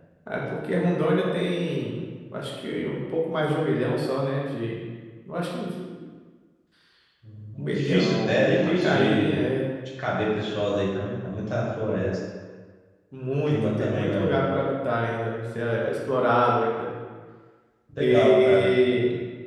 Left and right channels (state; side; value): identical; both; correlation 1.00